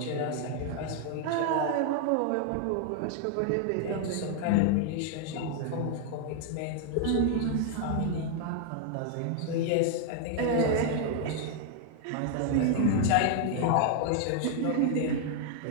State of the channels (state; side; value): different; both; correlation 0.00